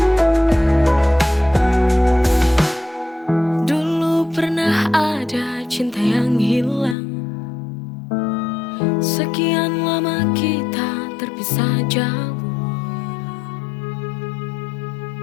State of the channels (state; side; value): drops out; right; at 7.0 s